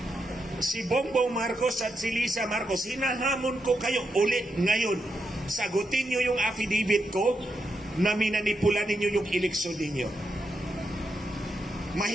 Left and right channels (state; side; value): normal; both; correlation 0.84